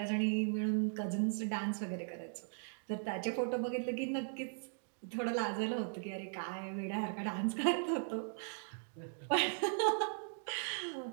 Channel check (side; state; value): left; silent; digital silence